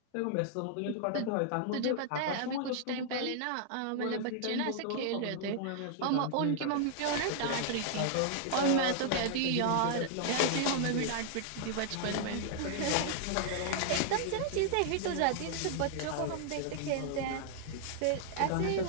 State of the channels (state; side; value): different; both; correlation -0.01